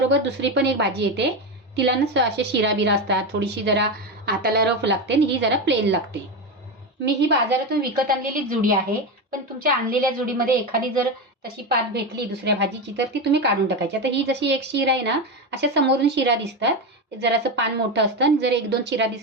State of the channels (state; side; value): normal; both; correlation 0.16